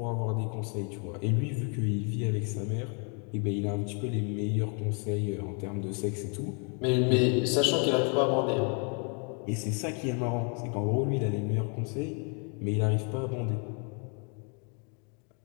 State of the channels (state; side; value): quieter; right; 38.3 dB